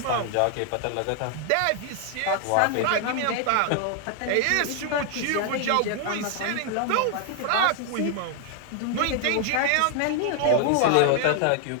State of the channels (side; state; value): both; different; correlation 0.00